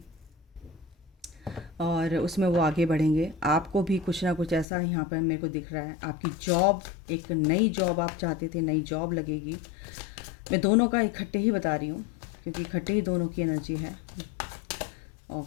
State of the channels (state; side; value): drops out; right; at 4.7 s